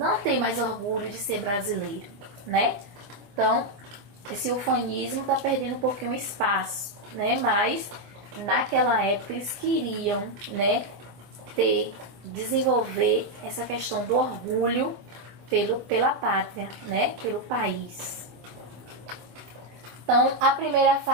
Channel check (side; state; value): left; late; 25 ms